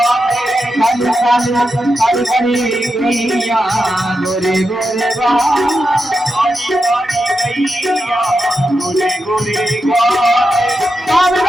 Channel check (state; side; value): normal; both; correlation 0.88